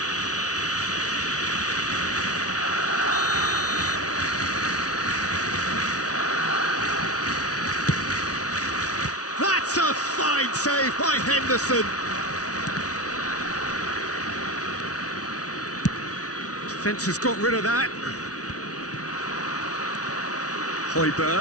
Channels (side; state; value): right; late; 0.67 ms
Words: That's a fine save by Henderson. Defence has got rid of that.